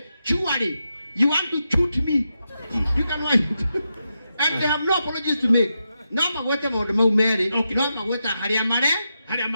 surely you want to shoot me you can wait and they have no apologies to make no magwete maũndũ mau merĩ no magweta harĩa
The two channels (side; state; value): both; inverted; correlation -0.87